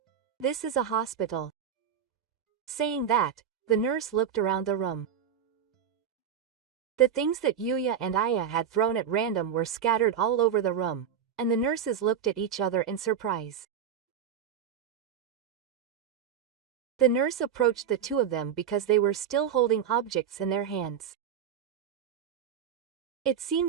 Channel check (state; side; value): quieter; left; 8.3 dB